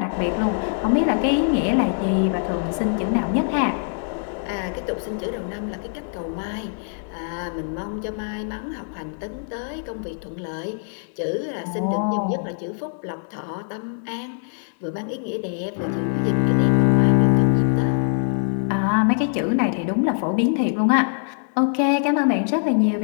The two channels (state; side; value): silent; right; digital silence